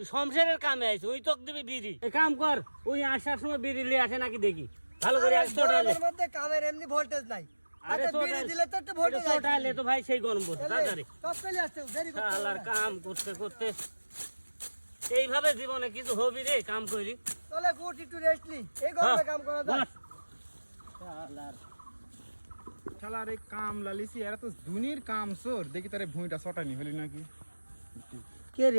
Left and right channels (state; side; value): inverted; both; correlation -1.00